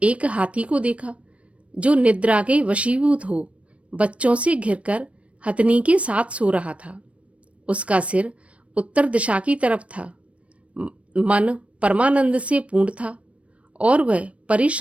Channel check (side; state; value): left; late; 0.063 ms